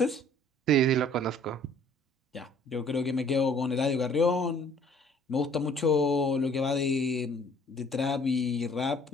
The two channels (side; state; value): both; normal; correlation 0.56